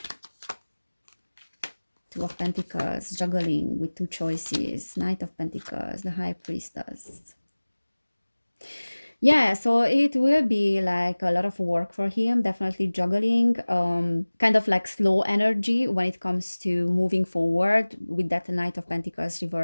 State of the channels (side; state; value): both; inverted; correlation -1.00